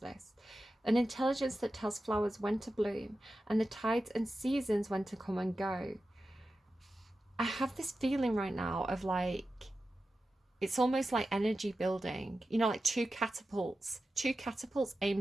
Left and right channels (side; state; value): both; normal; correlation 0.93